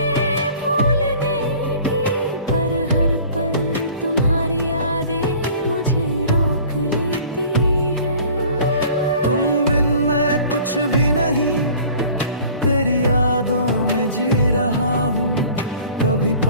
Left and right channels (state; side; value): inverted; both; correlation -0.48